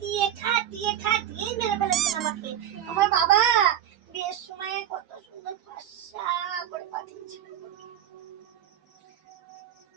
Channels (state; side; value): quieter; left; 10.5 dB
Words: খাটিয়ে খাটিয়ে মেরে ফেলেছেন আমাকে। আমার বাবা বিয়ের সময় কত সুন্দর ফর্সা করে পাঠিয়েছিল।